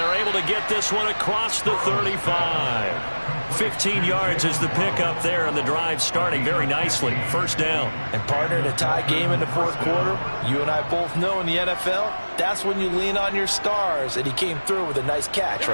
able to get this one across the 35. 15 yards is the pickup there, and the drive starting very nicely. 1st down. And partner, in a tie game in the 4th quarter, you and I both know in the NFL, that's when you lean on your stars, and he came through with a nice catch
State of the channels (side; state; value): both; inverted; correlation -1.00